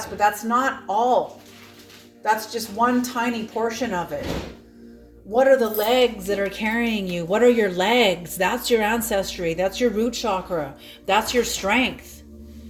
but that's not all. That's just one tiny portion of it. What are the legs that are carrying you? What are your legs? That's your ancestry. That's your root chakra. That's your strength.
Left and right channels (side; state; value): both; identical; correlation 1.00